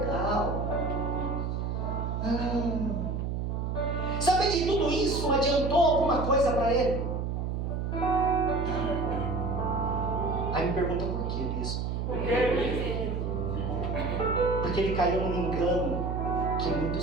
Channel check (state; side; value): noise; right; hum, 2 dB below the sound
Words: Saber de tudo isso adiantou alguma coisa para ele? Não. Aí me pergunta por quê, bispo? Porque ele caiu num engano que